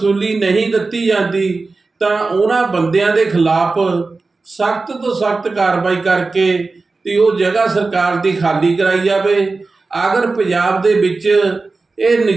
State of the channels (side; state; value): left; quieter; 3.8 dB